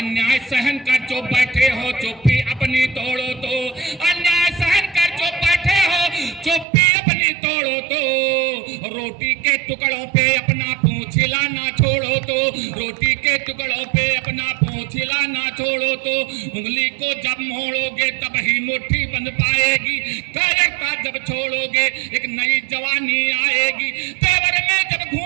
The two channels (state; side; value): drops out; left; at 6.7 s